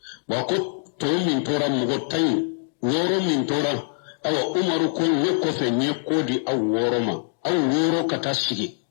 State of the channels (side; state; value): right; silent; digital silence